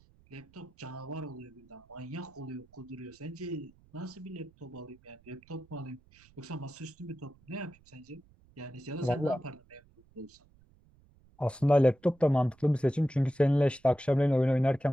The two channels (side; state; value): right; noise; rumble, 29 dB below the sound